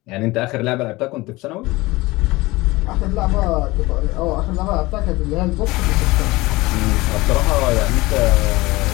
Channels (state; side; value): quieter; right; 20.9 dB